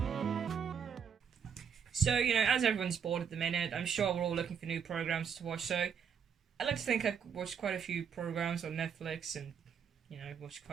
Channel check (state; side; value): quieter; left; 7.3 dB